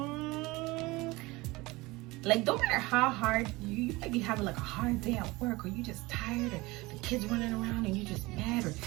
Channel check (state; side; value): quieter; left; 21.8 dB